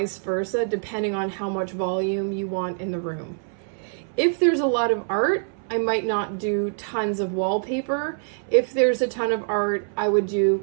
versa, depending on how much volume you want in the room. If there's a lot of art, I might not do tons of wallpaper. If there's a ton of art, I would do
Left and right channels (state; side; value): silent; left; 61 dB below the other